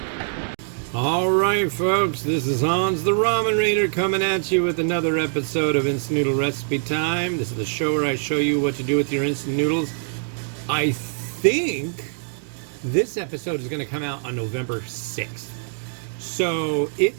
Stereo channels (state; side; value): silent; left; digital silence